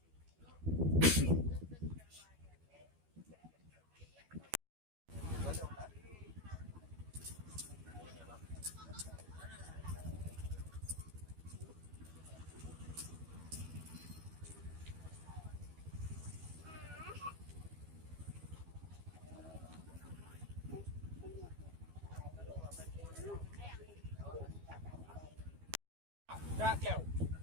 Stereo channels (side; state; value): left; late; 12 ms